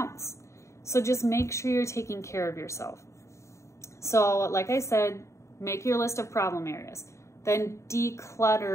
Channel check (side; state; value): right; late; 0.14 ms